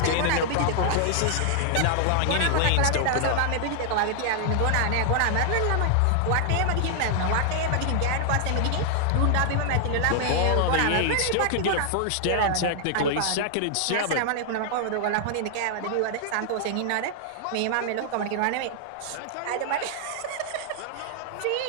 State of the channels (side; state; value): both; different; correlation -0.01